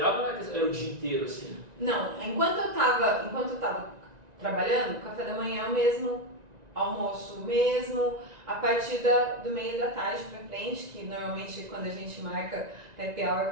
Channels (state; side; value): late; left; 1.9 ms